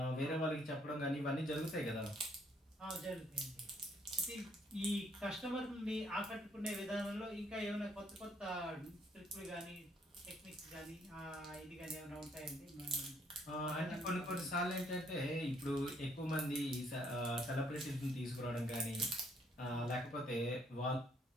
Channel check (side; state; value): both; normal; correlation 0.67